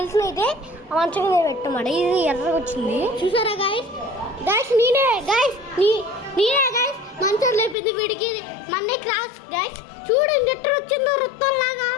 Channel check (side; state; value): right; drops out; at 7.8 s